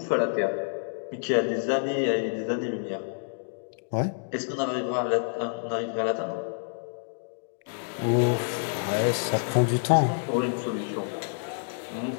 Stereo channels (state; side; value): silent; right; digital silence